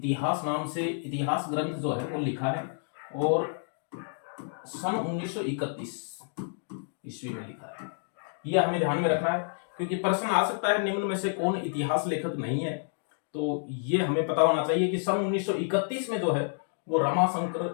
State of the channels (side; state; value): right; silent; digital silence